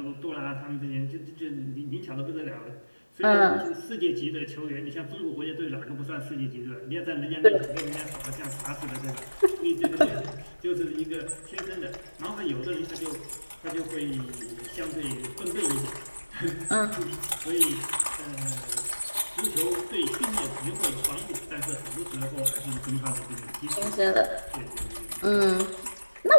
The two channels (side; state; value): both; inverted; correlation -1.00